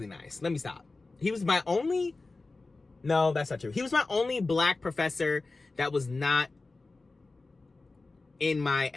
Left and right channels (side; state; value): right; quieter; 3.5 dB